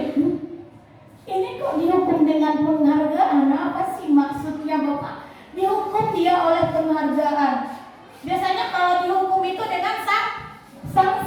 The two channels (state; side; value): identical; both; correlation 1.00